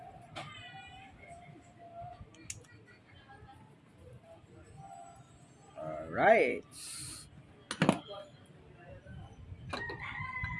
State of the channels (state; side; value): identical; both; correlation 1.00